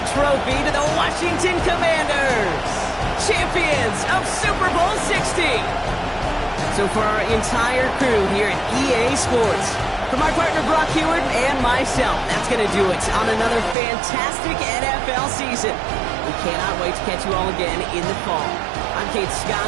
trophy to the Washington Commanders, champions of Super Bowl 60. So for our entire crew here at EA Sports, for my partner Brock Heward and myself, that's going to do it on another fantastic NFL season. We cannot wait to catch you all again in the fall. I'm Kate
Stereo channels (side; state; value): left; drops out; at 13.8 s